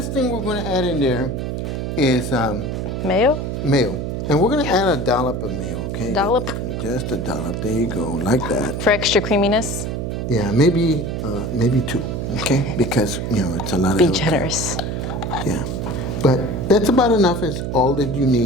thing we're going to add in there is Mayo? mayo. And we're going to add a dollop of mayo, okay? Dollop? Just a dollop. There you go, like that. For extra creaminess? Yeah, maybe 2, okay? Because, it's a lot of Be avocado. generous. Yeah. But that's about enough. Is all that you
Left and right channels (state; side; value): noise; right; hum, 3 dB below the sound